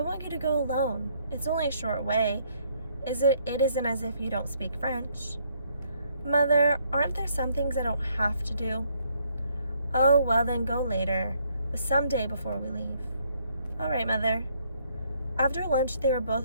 you to go alone. It's only a short way. It isn't as if you don't speak French." "Mother, aren't there some things I don't have to do?" "Oh, well then go later, but some day before we leave." "All right, Mother." After lunch, they were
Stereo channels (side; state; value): both; inverted; correlation -0.69